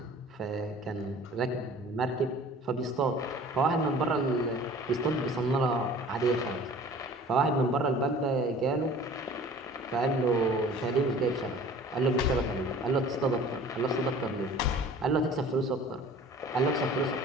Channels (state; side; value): normal; both; correlation 0.46